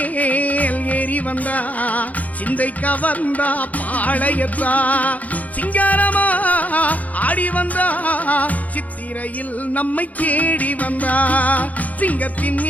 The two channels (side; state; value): right; late; 0.075 ms